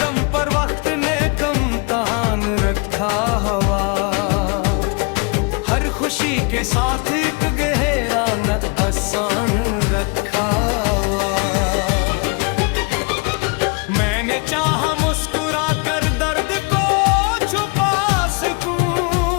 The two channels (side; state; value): right; quieter; 31.6 dB